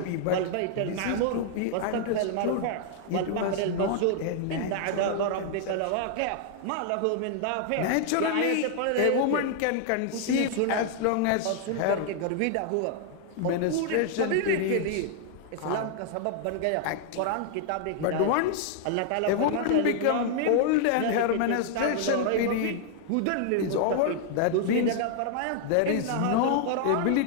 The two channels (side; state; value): both; different; correlation 0.00